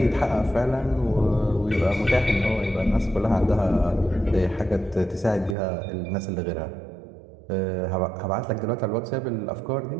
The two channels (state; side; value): drops out; left; at 5.6 s